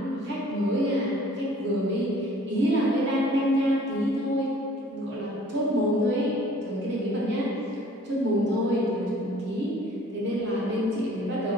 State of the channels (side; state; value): both; normal; correlation 0.53